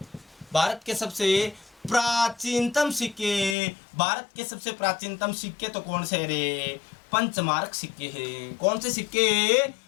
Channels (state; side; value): drops out; right; at 3.6 s